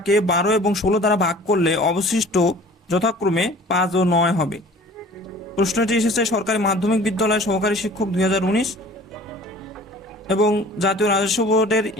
12 এবং 16 দ্বারা ভাগ করলে অবশিষ্ট যথাক্রমে 5 ও 9 হবে। প্রশ্নটি এসেছে সরকারি মাধ্যমিক বিদ্যালয় সহকারী শিক্ষক 2019 এবং জাতীয় রাজস্ব বোর্ডের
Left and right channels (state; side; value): normal; both; correlation 0.47